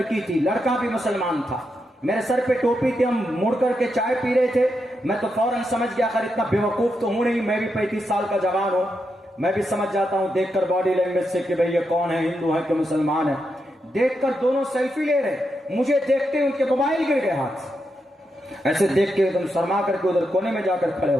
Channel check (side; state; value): both; normal; correlation 0.84